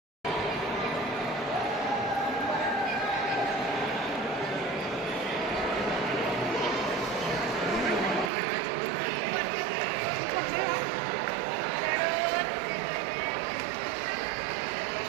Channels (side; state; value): left; drops out; at 8.3 s